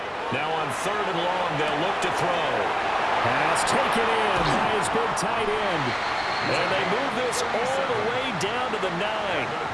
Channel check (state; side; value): identical; both; correlation 1.00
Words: Now on 3rd and long, they'll look to throw. Pass taken in by his big tight end. And they move this all the way down to the 9.